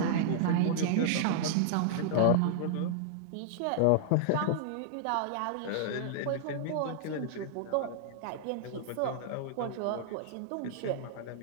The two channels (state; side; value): different; both; correlation -0.01